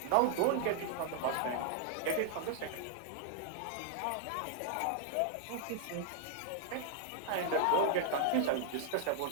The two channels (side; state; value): both; different; correlation 0.00